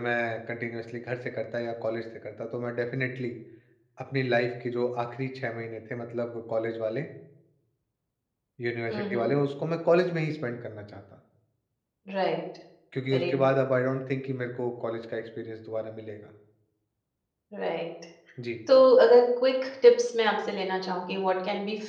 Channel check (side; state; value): both; identical; correlation 1.00